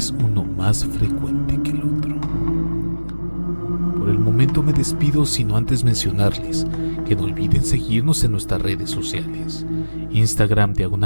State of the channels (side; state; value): both; inverted; correlation -1.00